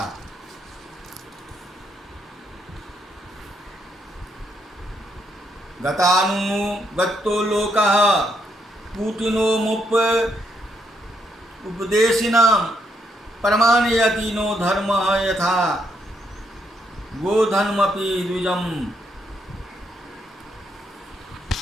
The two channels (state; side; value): normal; both; correlation 0.76